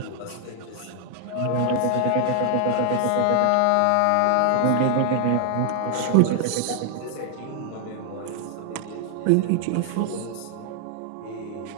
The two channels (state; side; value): different; both; correlation 0.00